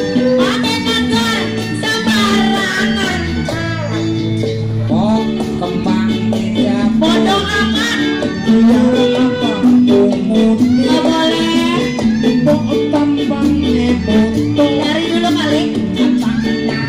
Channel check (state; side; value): identical; both; correlation 1.00